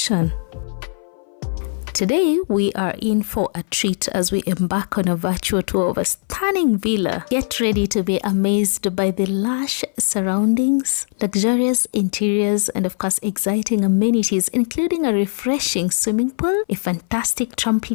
Today, we are in for a treat as we embark on a virtual tour of a stunning villa. Get ready to be amazed by the lush surroundings, luxurious interiors, and of course, exciting amenities, including a refreshing swimming pool, a fantastic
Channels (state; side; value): silent; right; 59 dB below the other